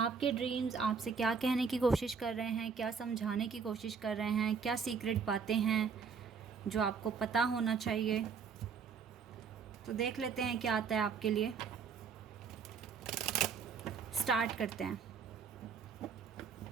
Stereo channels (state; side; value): quieter; left; 5.9 dB